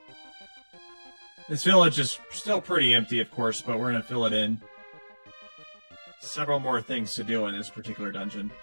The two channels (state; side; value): inverted; both; correlation -1.00